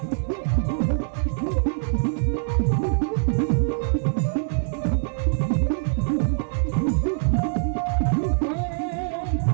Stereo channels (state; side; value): silent; left; 58 dB below the other